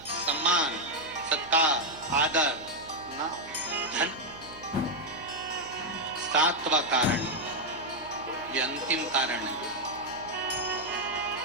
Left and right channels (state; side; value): noise; right; hum, 20 dB below the sound